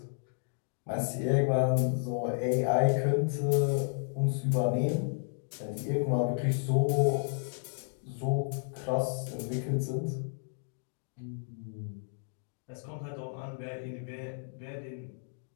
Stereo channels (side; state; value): right; silent; digital silence